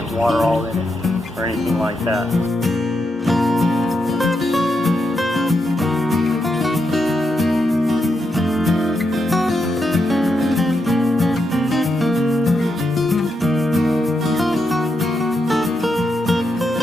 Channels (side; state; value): both; normal; correlation 0.83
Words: water all in it or anything like that.